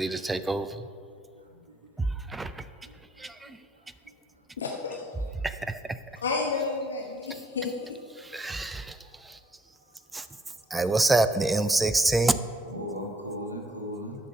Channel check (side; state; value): both; normal; correlation 0.67